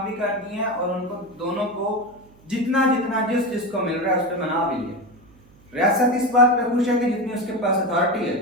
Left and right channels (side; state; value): right; noise; hum, 27 dB below the sound